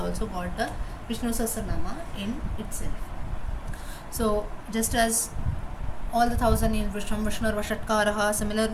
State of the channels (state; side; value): identical; both; correlation 1.00